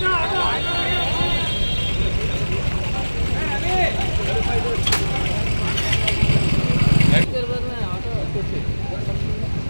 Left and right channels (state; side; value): inverted; both; correlation -1.00